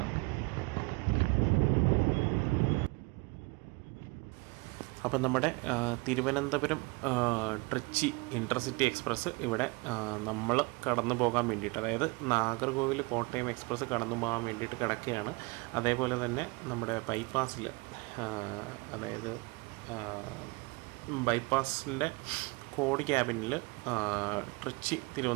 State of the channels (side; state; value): left; quieter; 26.6 dB